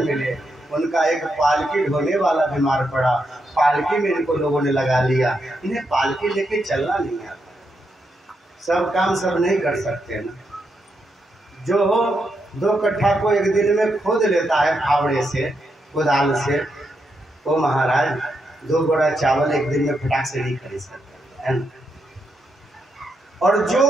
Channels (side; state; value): both; normal; correlation 0.82